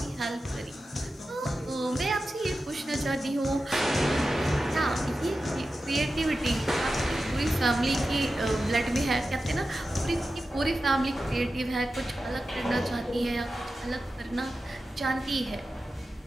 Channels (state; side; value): normal; both; correlation 0.92